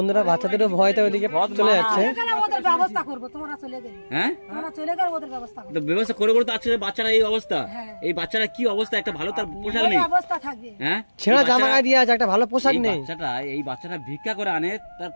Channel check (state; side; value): inverted; both; correlation -1.00